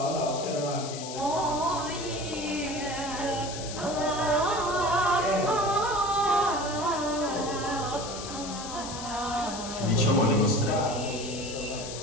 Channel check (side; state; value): left; noise; hiss, 9 dB below the sound